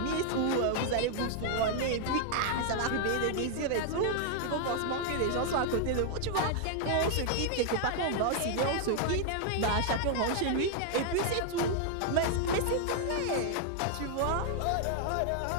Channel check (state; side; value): different; both; correlation 0.00